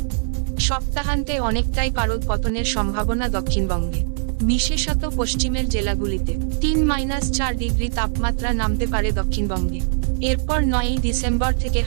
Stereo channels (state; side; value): silent; left; digital silence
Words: সপ্তাহান্তে অনেকটাই পারদ পতনের সম্ভাবনা দক্ষিণবঙ্গে, বিশেষত পশ্চিমের জেলাগুলিতে। 3-4 ডিগ্রি তাপমাত্রা নামতে পারে দক্ষিণবঙ্গে। এরপর 9ই ডিসেম্বর থেকে